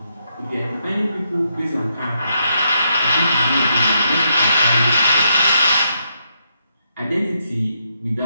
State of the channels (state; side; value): inverted; both; correlation -0.79